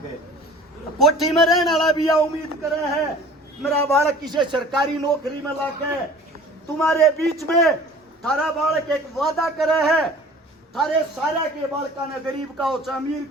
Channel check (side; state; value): both; normal; correlation 0.46